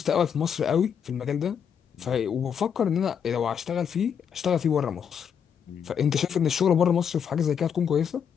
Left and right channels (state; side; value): quieter; right; 7.6 dB